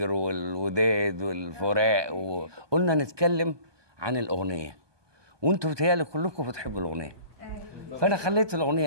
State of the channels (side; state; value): left; late; 1.2 ms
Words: والوداد والفراق وقلنا نتكلم عن الأغنية، وانتوا بتهيألي كلكم بتحبوا الأغنية. فأنا خليت